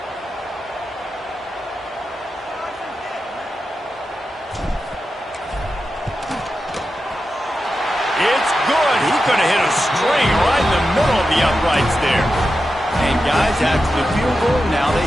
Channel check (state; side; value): normal; both; correlation 0.90